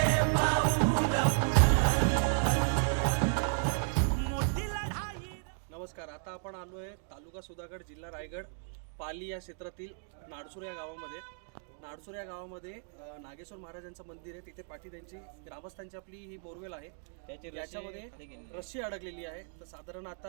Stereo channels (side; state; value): left; silent; 55 dB below the other